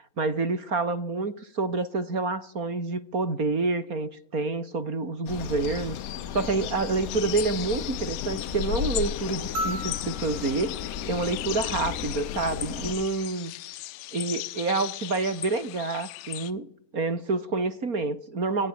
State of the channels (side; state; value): left; late; 3.4 ms